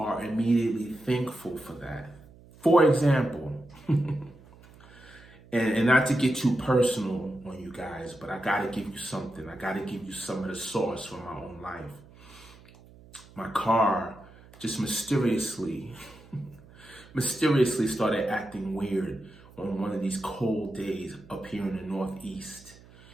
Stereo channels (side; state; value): right; noise; hum, 23 dB below the sound